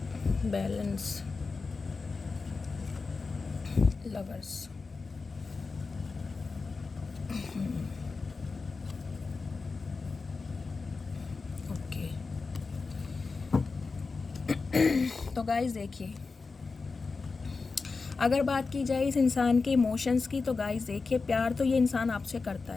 balance, lovers, okay. तो गाइस देखिए, अगर बात की जाए इस इंसान के इमोशंस की, तो गाइस देखिए, प्यार तो ये इंसान आपसे करता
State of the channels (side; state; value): right; quieter; 4.3 dB